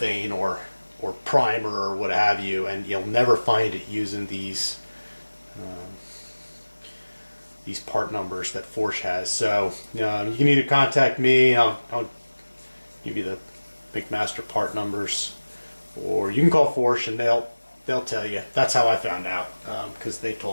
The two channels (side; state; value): both; inverted; correlation -1.00